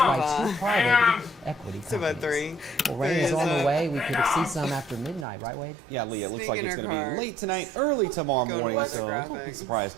2 private equity companies. Well, rain is on the way. We could see some after midnight, right, Wade? Yeah, Leah, it looks like it's going to be late tonight, early tomorrow morning. So I'm surprised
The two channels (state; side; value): drops out; left; at 5.2 s